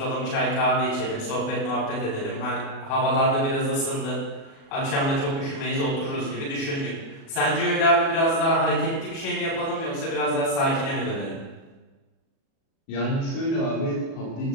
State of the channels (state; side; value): late; right; 36 ms